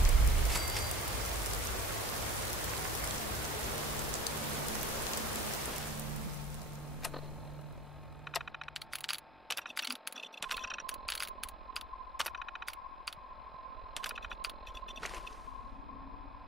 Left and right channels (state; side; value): normal; both; correlation 0.44